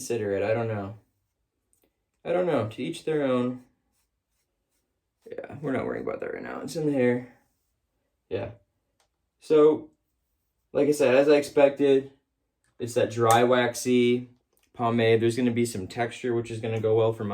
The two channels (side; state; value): both; identical; correlation 1.00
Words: it. I don't know. To each their own. Yeah, we're not worrying about that right now. It's in the hair. Yeah. So, like I said, as I expected, it's that dry, waxy pomade. There's going to be some texture, which is going to go well for